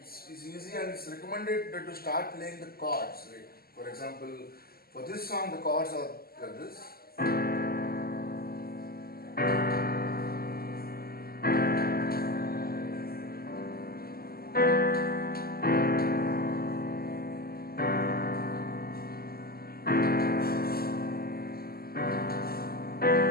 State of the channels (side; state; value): right; late; 0.44 ms